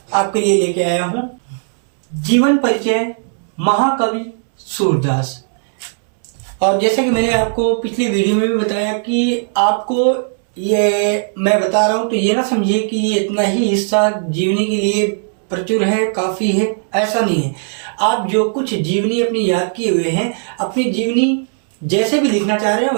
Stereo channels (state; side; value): silent; left; 67 dB below the other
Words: आपके लिए लेके आया हूं। जीवन परिचय महाकवि सूरदास। और जैसा कि मैंने आपको पिछली वीडियो में भी बताया कि आपको ये मैं बता रहा हूं तो ये ना समझिए कि ये इतना ही हिस्सा जीवनी के लिए प्रचुर है, काफी है, ऐसा नहीं है। आप जो कुछ जीवनी अपनी याद किए हुए हैं, अपनी जीवनी जैसे भी लिखना चाह रहे हैं